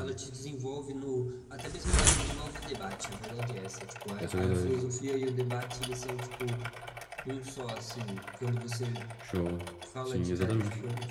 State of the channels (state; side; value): identical; both; correlation 1.00